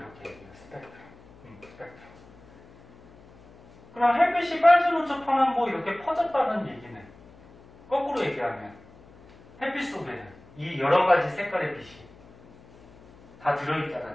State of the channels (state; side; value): noise; left; hum, 24 dB below the sound